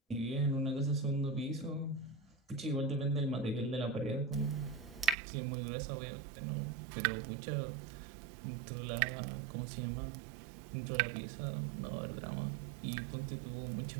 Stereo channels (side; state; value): left; drops out; at 5.2 s